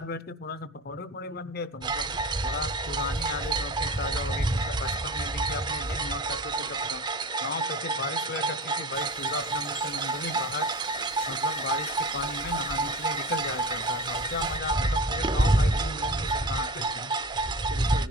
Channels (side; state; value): both; normal; correlation 0.32